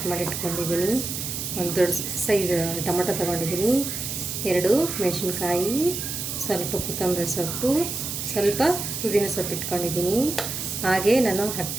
ಮಾಡಿ ಇಟ್ಕೊಂಡಿದ್ದೀನಿ, ಒಂದು ದೊಡ್ಡ ಸೈಜ್ ಟೊಮೊಟೊ ತೊಗೊಂಡಿದ್ದೀನಿ, 2 ಮೆಣಸಿನ್ಕಾಯಿ, ಸ್ವಲ್ಪ ಕೊತ್ತಂಬರಿ ಸೊಪ್ಪು, ಸ್ವಲ್ಪ ಪುದೀನ ಸೊಪ್ಪು ಇಟ್ಕೊಂಡಿದ್ದೀನಿ. ಹಾಗೆ ನಾನು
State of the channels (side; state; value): right; noise; hiss, 4 dB below the sound